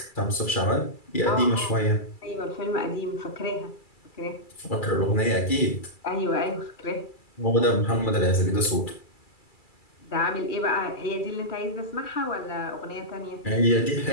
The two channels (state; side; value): late; right; 2.3 ms